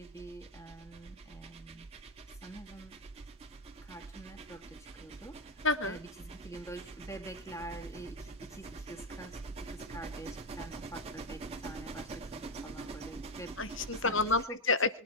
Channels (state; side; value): normal; both; correlation 0.06